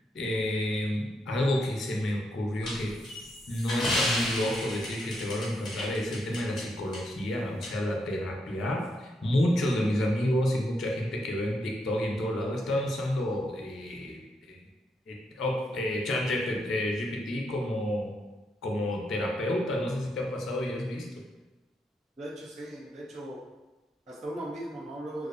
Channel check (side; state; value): both; normal; correlation 0.80